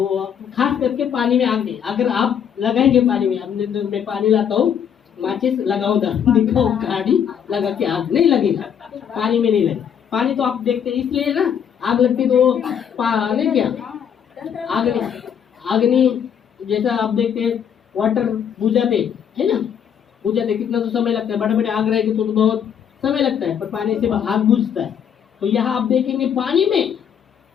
खास करके पानी में आग नहीं, अगर आप लगाएंगे पानी में, अब मैं पानी लाता हूँ, माचिस लगाओ, दिखाओ गाड़ी लगा के, आग नहीं लगेगा, पानी में नहीं लगेगा। पानी तो आप देखते हैं इसलिए ना, आग लगती तो पानी क्या अग्नि जैसा आप देखते हैं, वाटर बुझाते है ना, बुझाते कितना तो समय लगता है, बड़े बड़े आग रहेगी तो बहुत समय लगता है, पर पानी से आग बुझता है। तो यहाँ आप देखेंगे पानी में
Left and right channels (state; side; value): quieter; right; 8.2 dB